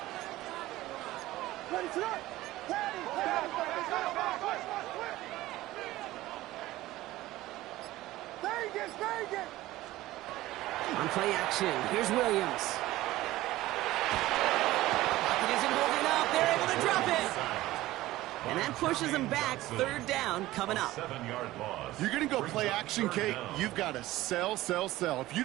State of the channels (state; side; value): quieter; left; 16.8 dB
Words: Ready to run. Ready. Very good. On play action, here's Williams. Pocket isn't holding up. They're able to drop it. And that pushes them back. 3rd down coming up. 7-yard loss. You're going to go play action, Kate. You've got to sell. If you